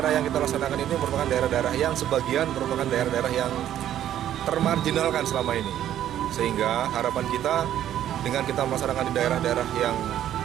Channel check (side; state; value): left; quieter; 11.4 dB